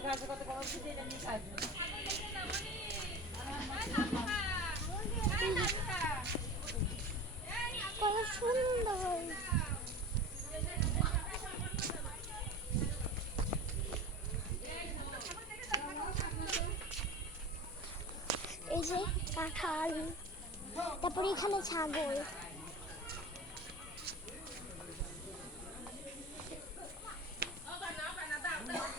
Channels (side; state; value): both; normal; correlation 0.33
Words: কত সুন্দর। এই যে কাঁঠাল, তারপরে এখানে ছাগল।